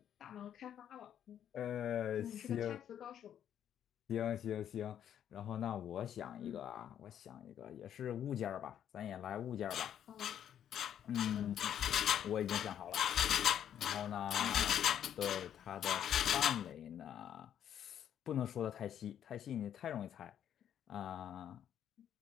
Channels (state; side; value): quieter; right; 9.8 dB